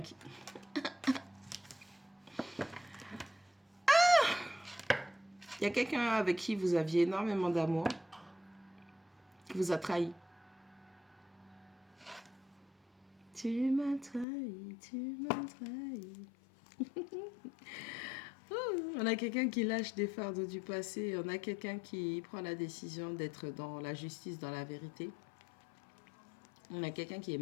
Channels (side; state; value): right; drops out; at 14.2 s